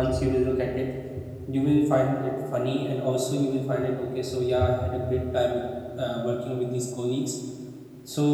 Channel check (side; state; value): both; identical; correlation 1.00